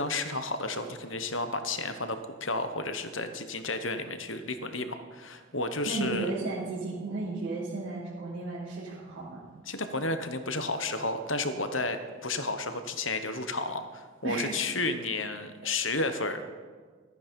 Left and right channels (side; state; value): both; normal; correlation -0.01